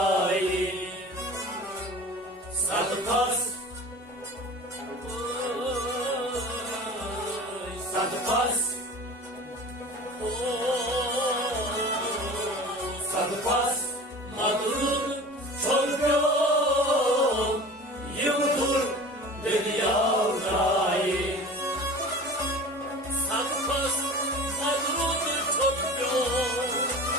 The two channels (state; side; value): normal; both; correlation 0.38